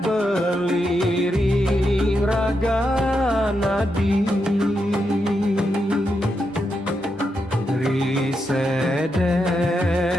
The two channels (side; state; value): both; normal; correlation 0.84